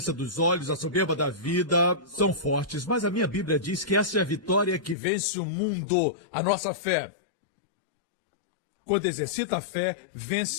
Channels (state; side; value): drops out; right; at 5.0 s